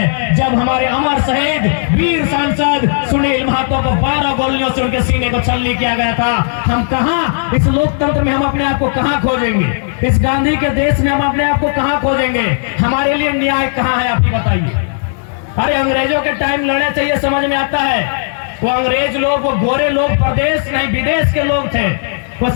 जब हमारे अमर शहीद वीर सांसद सुनील महतो को 12 गोलियों से उनके सीने को छलनी किया गया था। हम कहां, इस लोकतंत्र में हम अपने आप को कहां खोजेंगे, इस गांधी के देश में हम अपने आप को कहां खोजेंगे, हमारे लिए न्याय कहां है, आप ही बताइए। अरे अंग्रेजों के टाइम लड़ना चाहिए, समझ में आता है, वो अंग्रेज लोग, वो गोरे लोग प्रदेश नहीं विदेश के लोग थे, वो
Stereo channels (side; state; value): right; silent; digital silence